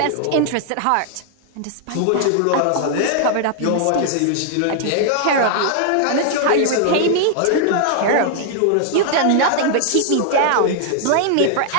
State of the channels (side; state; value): both; different; correlation 0.00